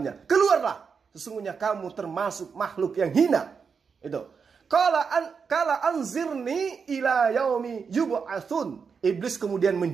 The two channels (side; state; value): left; quieter; 5.8 dB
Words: Keluarlah, sesungguhnya kamu termasuk makhluk yang hina. Itu. Kala anzirni ila yaumi yub'atsun. Iblis kemudian